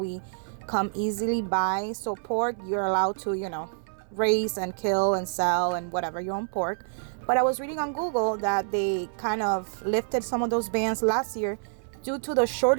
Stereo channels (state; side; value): silent; left; 59 dB below the other